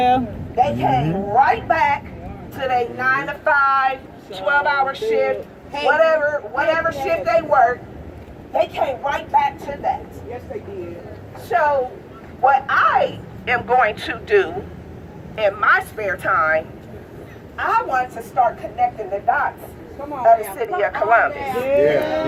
they came right back to their 9 to 5, 12-hour shift, whatever shift they worked. They came right back to that. Yes, they did. So what I am going to do in my spare time, I want to start connecting the dots Come of on. the city of Columbus.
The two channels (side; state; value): both; identical; correlation 1.00